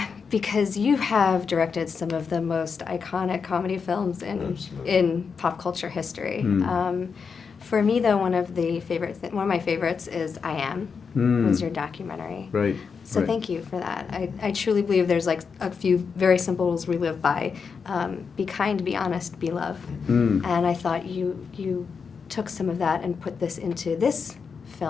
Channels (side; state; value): right; quieter; 5.7 dB